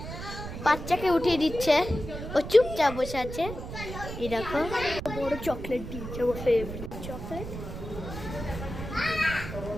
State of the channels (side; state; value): right; noise; rumble, 8 dB below the sound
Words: বাচ্চাকে উঠিয়ে দিচ্ছে, ও চুপচাপ বসে আছে। এই দেখো বড় চকলেট দিচ্ছে, ও ফেভারিট চকলেট।